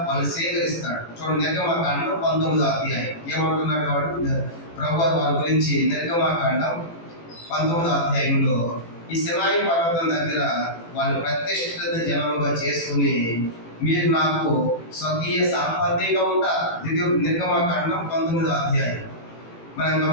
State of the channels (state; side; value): late; right; 18 ms